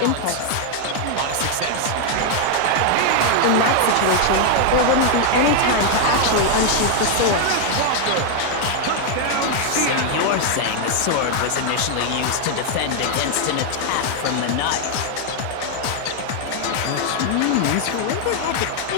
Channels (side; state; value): both; different; correlation 0.00